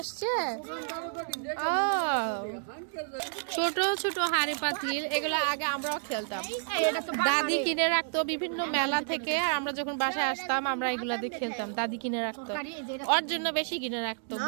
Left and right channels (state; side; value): silent; left; digital silence